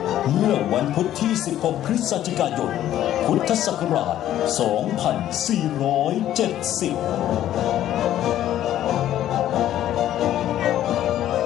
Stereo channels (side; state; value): right; quieter; 12.2 dB